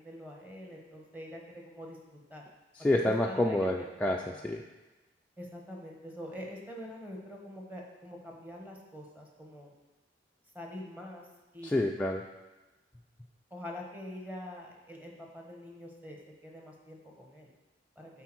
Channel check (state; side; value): normal; both; correlation 0.80